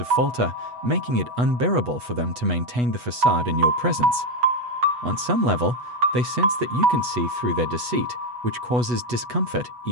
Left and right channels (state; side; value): late; left; 8.2 ms